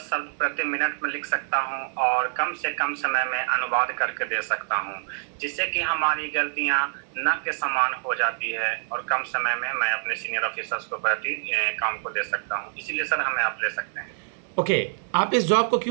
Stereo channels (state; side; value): silent; left; digital silence